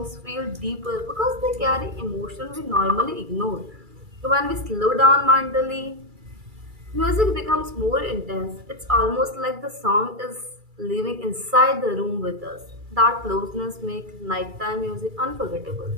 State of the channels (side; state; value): left; late; 2.3 ms